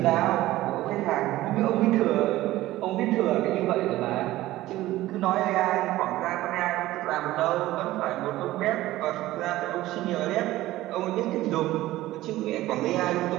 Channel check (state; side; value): quieter; left; 16.2 dB